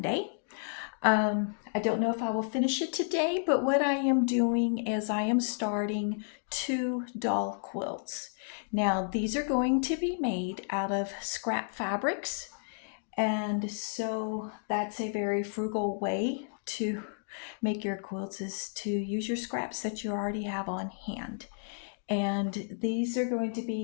I don't know if I will finish it today, but what I am doing is I am starting 2 doll quilts. Now, these are going to be made out of scrap fabrics, and so that's a very frugal way to make your quilts is to use your scraps that you already have on hand. And these are going to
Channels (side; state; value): right; silent; digital silence